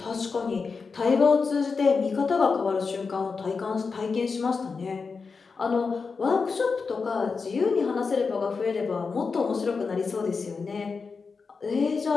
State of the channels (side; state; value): right; quieter; 4.9 dB